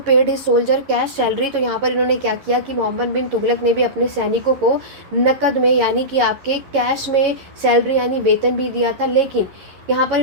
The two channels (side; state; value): left; late; 11 ms